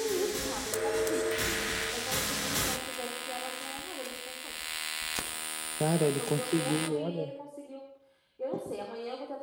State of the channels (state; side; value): identical; both; correlation 1.00